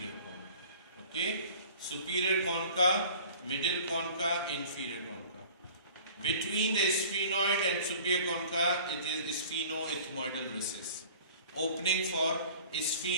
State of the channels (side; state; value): both; inverted; correlation -0.46